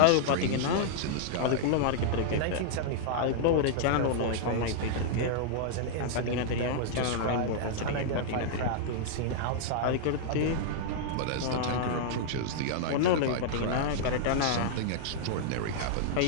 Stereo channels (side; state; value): both; different; correlation -0.01